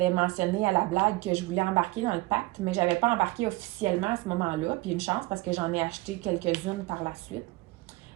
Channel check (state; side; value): quieter; left; 20.9 dB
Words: mentionné à la blague que je voulais embarquer dans le pacte, mais je n'avais pas embarqué officiellement à ce moment-là. Puis une chance parce que j'en ai acheté quelques-unes par la suite.